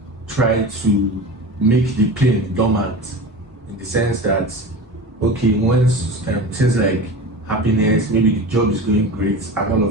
try to make the pain dormant, in the sense that, okay, once things like happiness, maybe the job is going great, and all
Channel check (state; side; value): normal; both; correlation 0.31